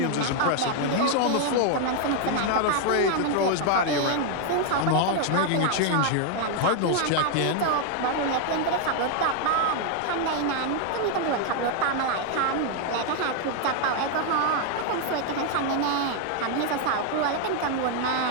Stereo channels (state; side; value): different; both; correlation 0.00